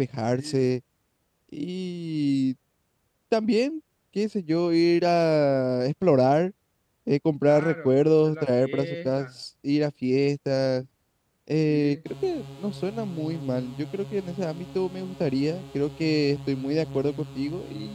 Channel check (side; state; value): both; identical; correlation 1.00